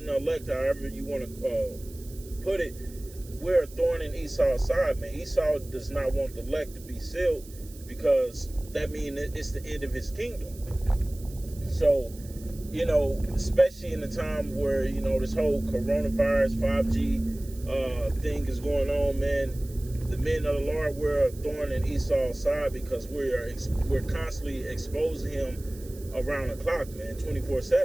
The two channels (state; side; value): noise; right; hiss, 20 dB below the sound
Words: the elect, however you want to put it. We're a thorn in Esau's side, man. Esau does not want the elect to be sealed, because that means it's the end of his kingdom. So, especially in the time where, this whole coronavirus, 5G thing is going on, man, the men of the Lord, we're a thorn in Esau's side, because we're constantly exposing him around the clock, man,